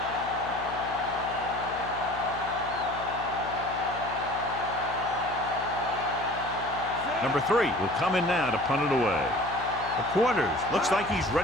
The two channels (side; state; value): left; noise; hum, 13 dB below the sound